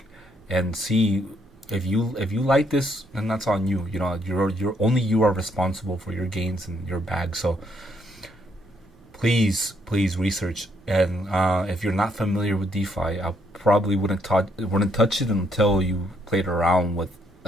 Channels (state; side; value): normal; both; correlation 0.72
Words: and see if you like this, then that's on you. You're only you are responsible for your gains and your bag. So please research. And if you're not familiar with DeFi, I probably wouldn't touch it until you played around with